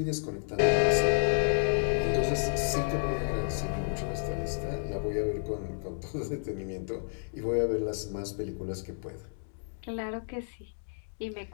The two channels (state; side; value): silent; right; digital silence